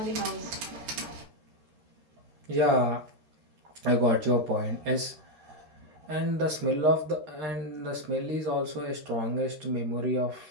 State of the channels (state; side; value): late; left; 13 ms